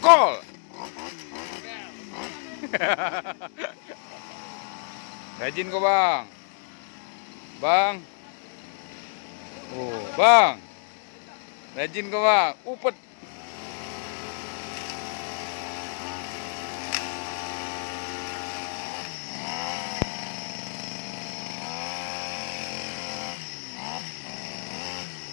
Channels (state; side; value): silent; right; digital silence